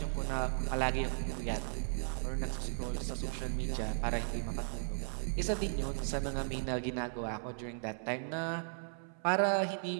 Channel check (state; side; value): silent; left; 54 dB below the other